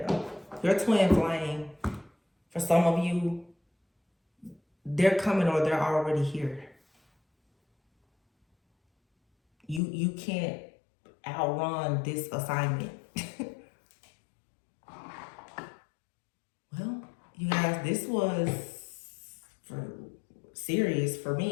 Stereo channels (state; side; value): drops out; right; at 9.8 s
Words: Your twin flame. For some of you, they're coming or they're already here. You can't outrun this assignment. Well, you guys, this was serious for